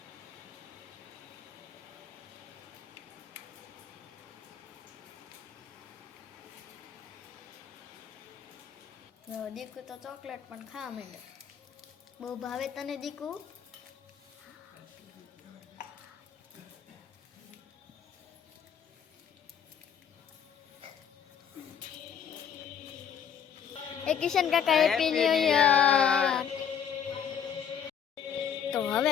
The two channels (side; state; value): right; quieter; 7.9 dB